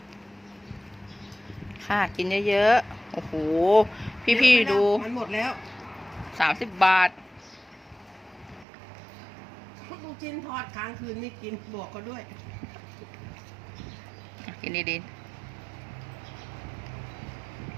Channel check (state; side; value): drops out; left; at 8.7 s